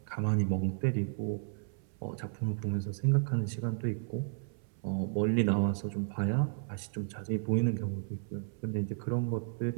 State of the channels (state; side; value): silent; left; 56 dB below the other